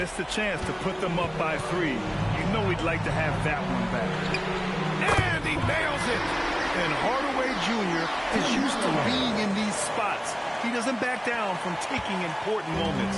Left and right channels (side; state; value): both; identical; correlation 1.00